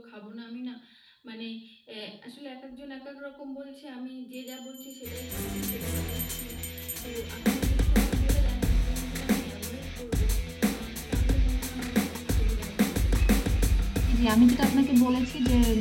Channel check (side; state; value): both; identical; correlation 1.00